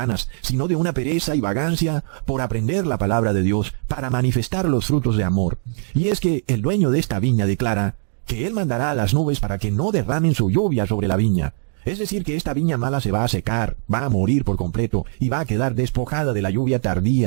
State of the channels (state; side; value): silent; left; 65 dB below the other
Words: sino de una pereza y vagancia por aprender la palabra de Dios para manifestar los frutos de amor. Y es que el dueño de esta viña declara que él mandará a las nubes para que no derramen su lluvia sobre la viña. Es decir, que esta viña mala se va a secar, va a morir por completo y va a quedar despojada de la lluvia